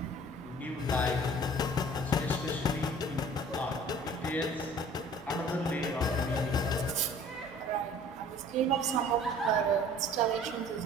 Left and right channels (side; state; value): both; normal; correlation 0.49